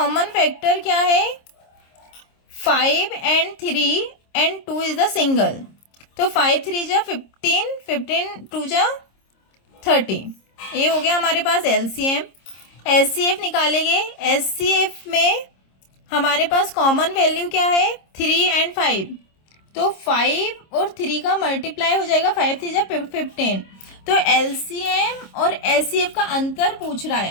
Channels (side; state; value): right; late; 26 ms